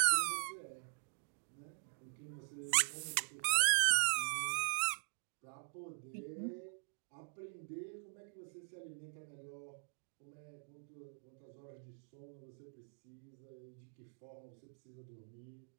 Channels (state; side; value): silent; left; digital silence